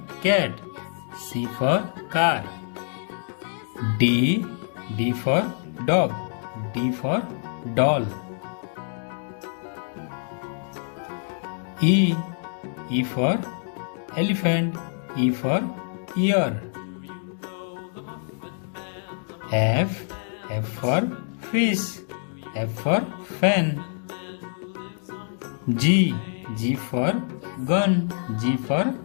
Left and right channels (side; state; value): right; silent; digital silence